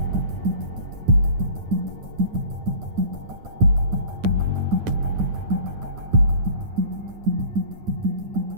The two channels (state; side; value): late; left; 9.5 ms